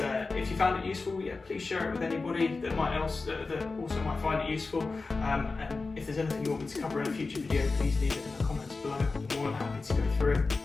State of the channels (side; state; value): right; quieter; 3.9 dB